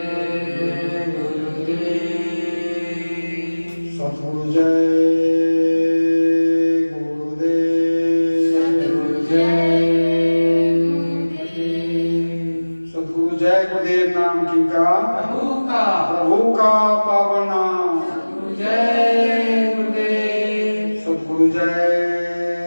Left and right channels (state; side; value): inverted; both; correlation -1.00